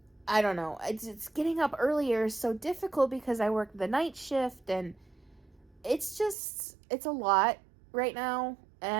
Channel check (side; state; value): left; drops out; at 6.4 s